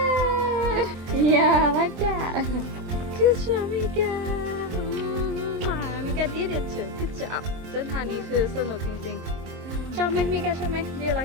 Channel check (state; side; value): late; left; 23 ms